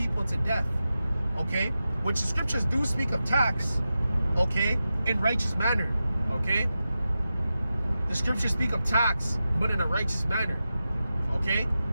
to death. Okay? Which the scriptures do speak of tax. Okay? In righteous manner. Okay? The scriptures speak of tax, but in a righteous manner. Okay?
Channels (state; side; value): inverted; both; correlation -0.92